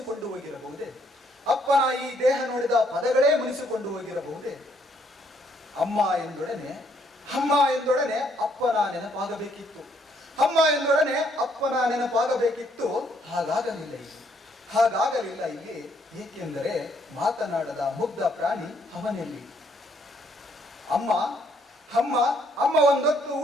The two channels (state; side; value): normal; both; correlation 0.69